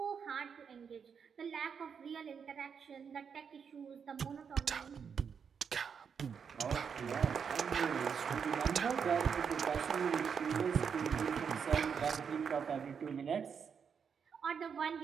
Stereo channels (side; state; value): left; quieter; 6.7 dB